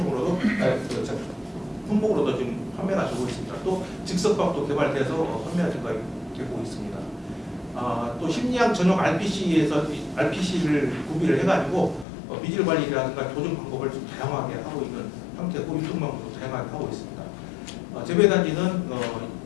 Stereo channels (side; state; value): right; drops out; at 12.1 s